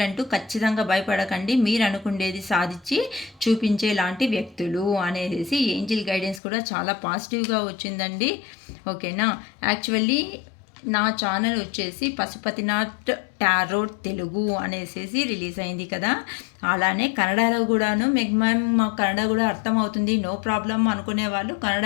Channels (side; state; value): right; drops out; at 6.4 s